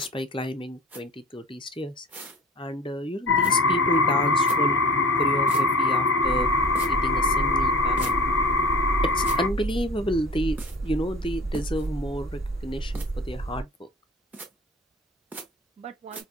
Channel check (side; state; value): both; normal; correlation 0.39